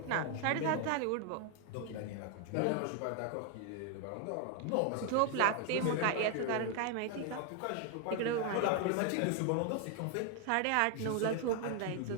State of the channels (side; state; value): both; different; correlation 0.00